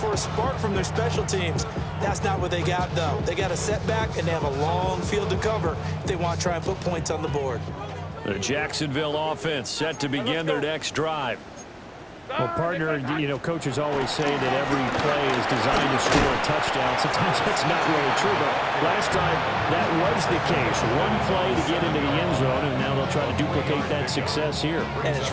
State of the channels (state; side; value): identical; both; correlation 1.00